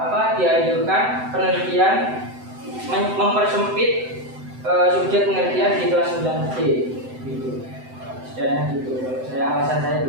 dianjurkan penelitian mempersempit subjek penelitian di kelas 9D gitu. Setidaknya gitu. Alasan saya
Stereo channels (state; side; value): late; left; 7.9 ms